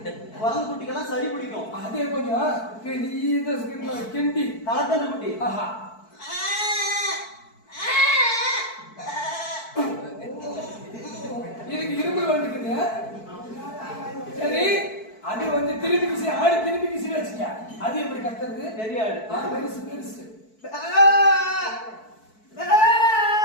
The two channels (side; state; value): right; late; 4.6 ms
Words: குரங்கு குட்டிக்கெல்லாம் சளி பிடிக்கும் அதே கொஞ்சம் கிண்டி தளத்தன குட்டி ஆஹா இதுக்கு இரும்பு வந்துக்குது சரி அது வந்து திருப்பி கிசி ஆடு திருப்பி கிசி வச்சுக்க அது எப்படி கத்துறது பெரிய ஆடு பெருசு பெருசு சரி